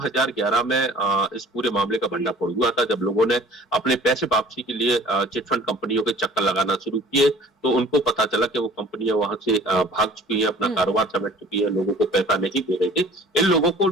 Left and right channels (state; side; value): normal; both; correlation 0.49